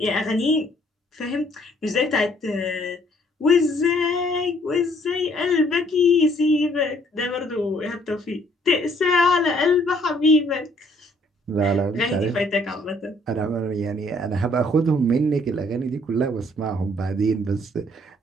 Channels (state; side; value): normal; both; correlation 0.63